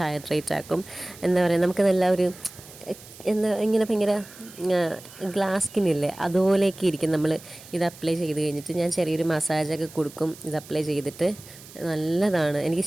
ഹൈഡ്രേറ്റ് ആക്കും. എന്താ പറയുക, നമുക്ക് നല്ല ഒരു ഇങ്ങനെ ഭയങ്കര ഗ്ലാസ് സ്കിന്നില്ലേ അതുപോലെയൊക്കെ ഇരിക്കും നമ്മൾ ഇത് അപ്ലൈ ചെയ്ത് കഴിഞ്ഞിട്ട്. ഞാൻ ചെറിയൊരു മസാജൊക്കെ കൊടുക്കും ഇത് അപ്ലൈ ചെയ്തിട്ട്. നല്ലതാണ്,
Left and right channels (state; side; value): noise; right; hiss, 19 dB below the sound